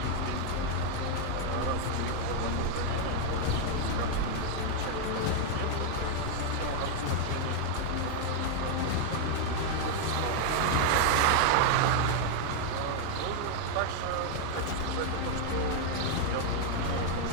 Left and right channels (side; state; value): both; different; correlation 0.00